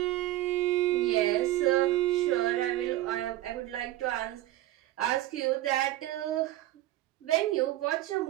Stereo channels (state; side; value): quieter; left; 15.4 dB